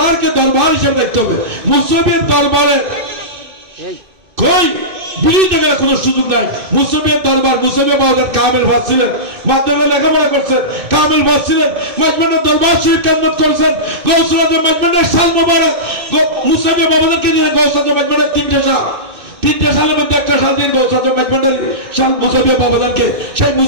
দরবার হিসেবে দেখতে হবে। মুসলিমের দরবারে কই বিরোধী গেলে কোনো সুযোগ নাই। মুসলিমের দরবার, মুসলিমের বাজার কামেল ভাসছিলেন, মাধ্যমে লেখাপড়া করছেন, কামেল ভাসছিলেন, মাজমানের দরবার শরীফ কেন্দ্র করেছেন, গৌসুল আজম মাজমানের সাল মোবারক, মুসলিমের বাবাদেরকে নিয়ে গৌসুল আজম মাজমানের তিনটে সালের মধ্যে একটা সাল দিন গৌসুল আজম মাজমানের সাল মুসলিমের বাবাদানকে, সেই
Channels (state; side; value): late; left; 2.6 ms